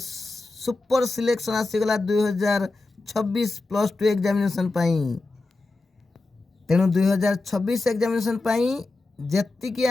सिलेक्शन आसीगला 2026 +2 एग्जामिनेशन पाई। तेणु 2026 एग्जामिनेशन पाई जेतिकी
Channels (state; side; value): quieter; right; 3.3 dB